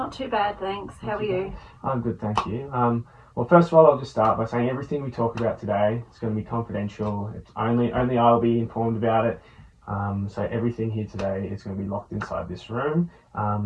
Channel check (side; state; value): both; identical; correlation 1.00